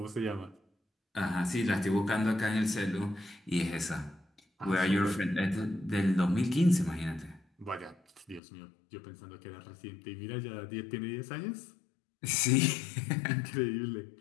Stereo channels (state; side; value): drops out; right; at 8.4 s